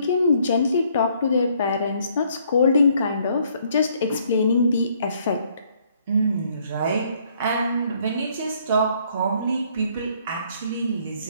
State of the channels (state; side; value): inverted; both; correlation -0.66